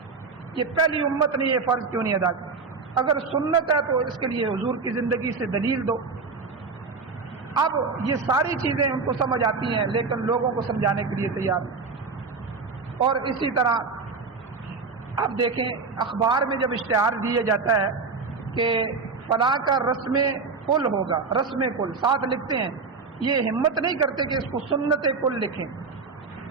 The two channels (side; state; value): left; quieter; 4.6 dB